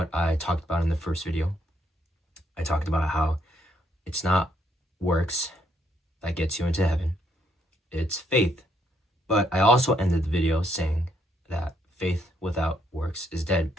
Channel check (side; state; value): both; normal; correlation 0.73